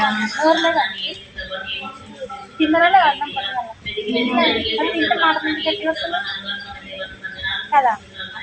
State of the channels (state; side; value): identical; both; correlation 1.00